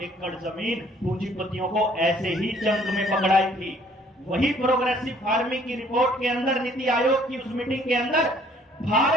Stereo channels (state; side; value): normal; both; correlation 0.60